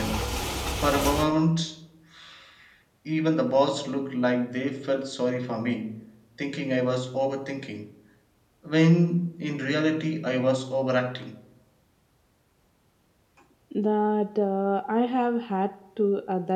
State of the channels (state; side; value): identical; both; correlation 1.00